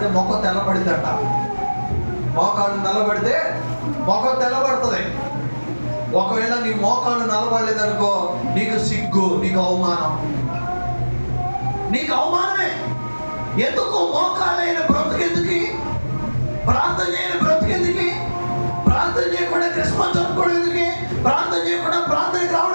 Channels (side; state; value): both; inverted; correlation -1.00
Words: మొక్క తెల్లబడిద్దంట. మోకాళ్ళు నల్లబడితే మొక్క తెల్లబడుతుంది. ఒకవేళ నీ మోకాళ్ళు నల్లబడలేదనుకో, నీకు సిగ్గు, నీకు అవమానం, నీకు అవమానమే. ఎందుకు మోకాళ్ళైన బ్రతుకెందుకు, ప్రార్థన చేయని బ్రతుకెందుకు, ప్రార్థన చేయకుండా క్రిస్మస్ జరుపుకోవడం ఎందుకు, ప్రార్థన చేయకుండా ప్రార్థనకి